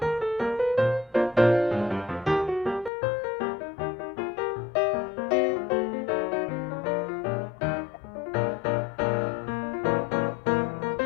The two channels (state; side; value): drops out; right; at 2.9 s